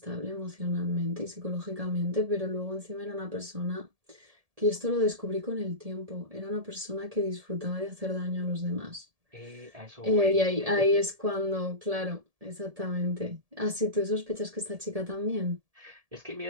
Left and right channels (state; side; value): late; left; 1.7 ms